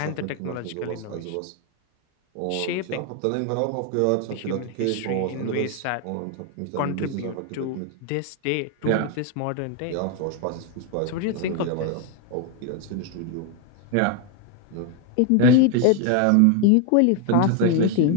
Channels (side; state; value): both; different; correlation 0.01